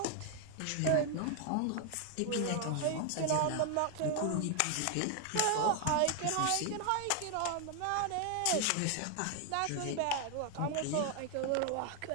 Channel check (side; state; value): both; different; correlation 0.00